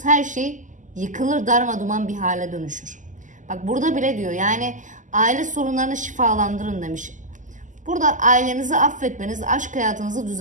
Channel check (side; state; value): left; late; 0.37 ms